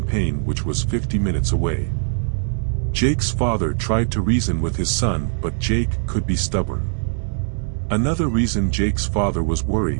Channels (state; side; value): silent; left; digital silence